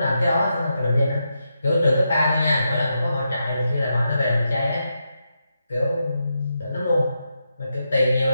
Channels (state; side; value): inverted; both; correlation -0.84